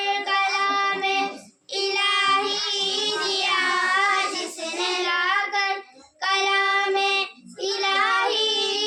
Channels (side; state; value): both; identical; correlation 1.00